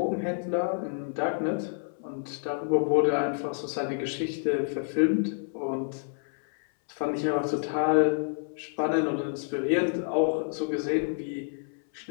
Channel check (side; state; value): right; silent; 59 dB below the other